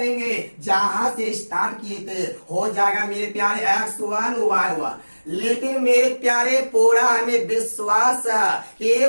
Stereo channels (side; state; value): both; inverted; correlation -1.00